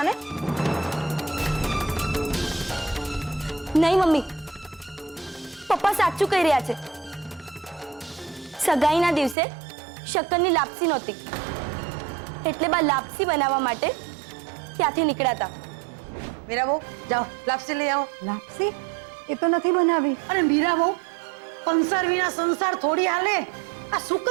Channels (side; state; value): left; drops out; at 9.3 s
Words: ને? નહીં મમ્મી, પપ્પા સાચું કહી રહ્યા છે. સગાઈના દિવસે શક્કરની લાપસી નહોતી એટલે બા લાપસી બનાવવા માટે ત્યાંથી નીકળ્યા હતા. મીરા બહુ, જાઓ લાપસી લઈ આવો. લાપસી? એ તો નથી બનાવી. અને મીરા બહુ, કંસાર વિના સંસાર થોડી હાલે. આ